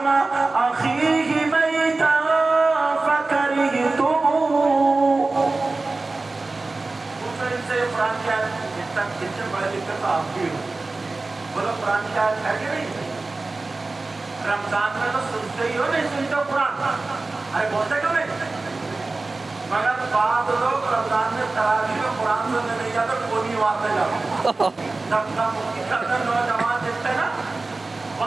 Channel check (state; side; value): quieter; left; 3.4 dB